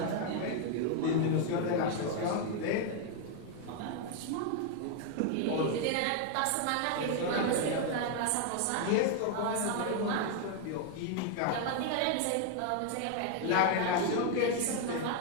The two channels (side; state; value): both; different; correlation 0.00